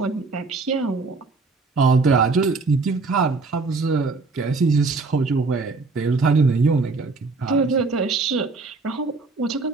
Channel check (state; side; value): quieter; left; 3.9 dB